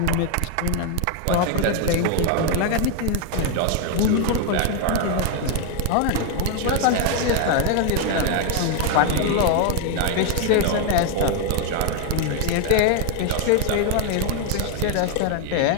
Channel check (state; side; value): different; both; correlation 0.00